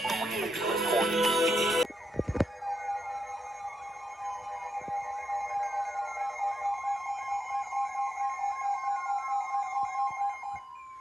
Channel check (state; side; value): normal; both; correlation 0.85